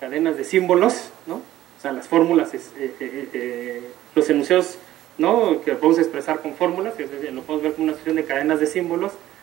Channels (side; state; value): left; quieter; 14.0 dB